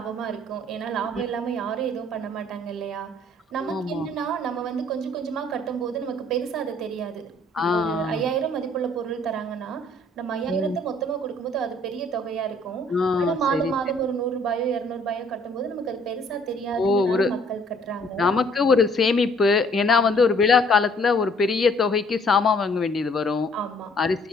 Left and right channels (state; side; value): normal; both; correlation 0.60